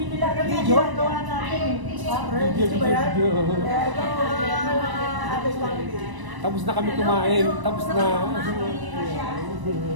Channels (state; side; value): late; left; 1.0 ms